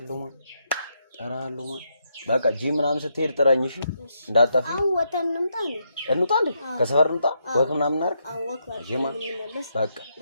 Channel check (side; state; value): both; inverted; correlation -0.79